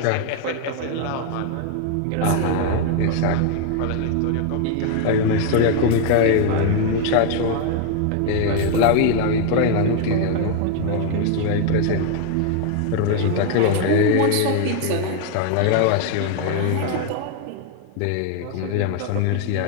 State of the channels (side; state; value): both; different; correlation 0.01